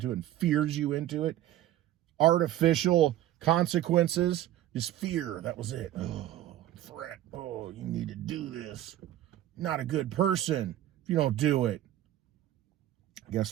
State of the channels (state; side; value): quieter; left; 13.5 dB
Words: it and fears you into it, artificial consequences, just fear, that was it. Oh, threat. Oh, you need to do this. Not a good person if you don't do it.